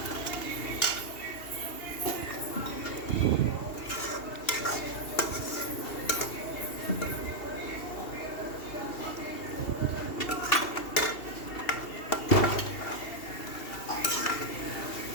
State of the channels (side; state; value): right; late; 2.8 ms